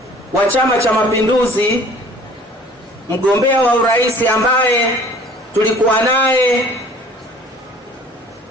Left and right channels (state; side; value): normal; both; correlation 0.51